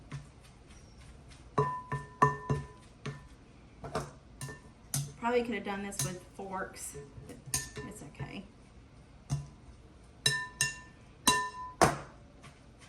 Probably could have done this with forks, but it's okay.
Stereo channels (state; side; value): identical; both; correlation 1.00